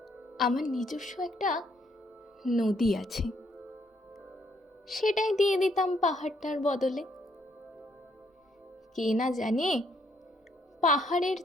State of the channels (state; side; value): normal; both; correlation 0.71